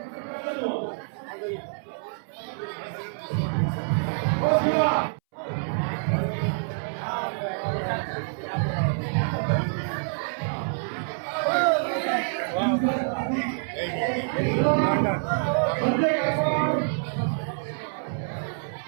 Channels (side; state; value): left; silent; 60 dB below the other